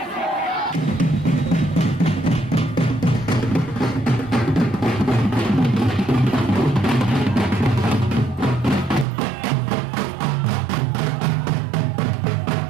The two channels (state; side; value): drops out; left; at 9.1 s